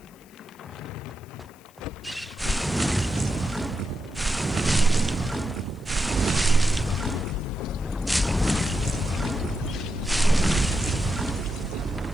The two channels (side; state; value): left; noise; hiss, 28 dB below the sound